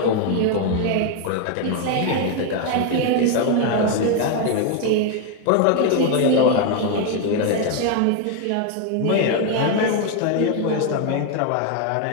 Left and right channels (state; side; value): different; both; correlation 0.01